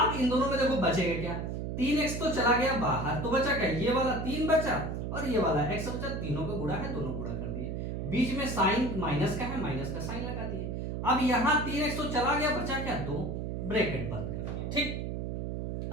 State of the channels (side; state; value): right; noise; hum, 3 dB below the sound